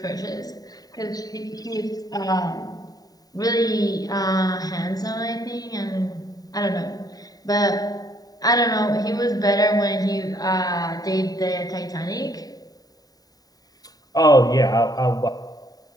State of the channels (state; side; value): late; right; 0.18 ms